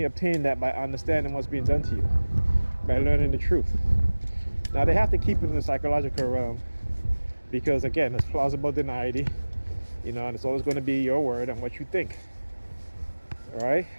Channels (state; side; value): inverted; both; correlation -1.00